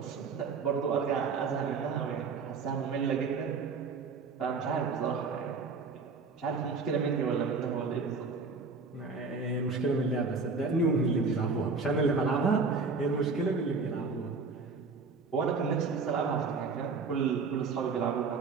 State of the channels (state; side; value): quieter; left; 4.6 dB